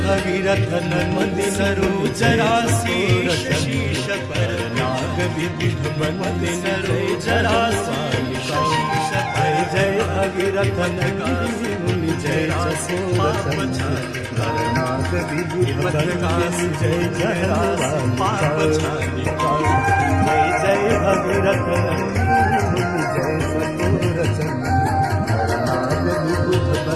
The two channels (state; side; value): identical; both; correlation 1.00